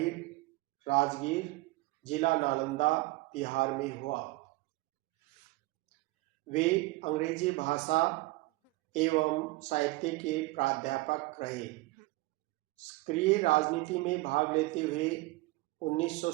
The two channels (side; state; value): left; quieter; 21.6 dB